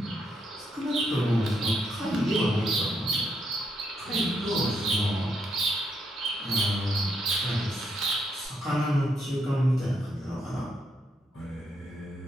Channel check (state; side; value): normal; both; correlation 0.78